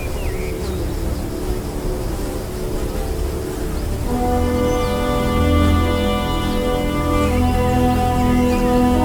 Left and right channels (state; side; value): identical; both; correlation 1.00